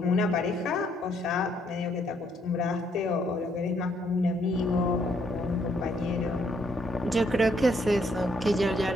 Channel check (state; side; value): normal; both; correlation 0.71